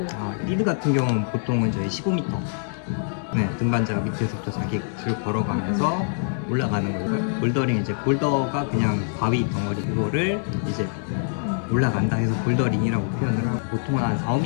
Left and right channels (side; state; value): right; silent; digital silence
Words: 리드 같은 경우는 보통은 저희 15m 등반자 밑에서부터 자기 줄 걸어가면서 올라가는 거고요. 볼더링 이제 볼더가 그냥 바위 덩어리 그거를 이제 올라간다 해서 볼더링이라고 표현을 하고 보통 한 4,